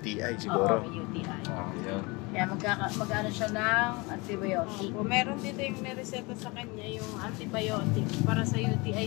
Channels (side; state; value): right; quieter; 26.1 dB